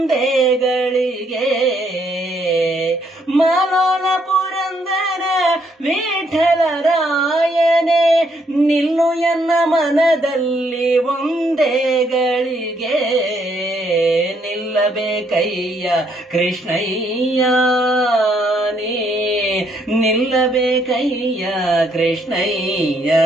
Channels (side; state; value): both; normal; correlation 0.71